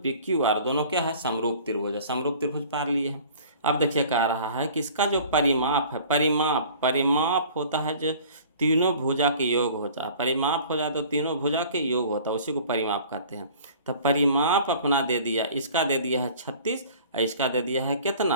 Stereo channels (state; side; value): inverted; both; correlation -0.47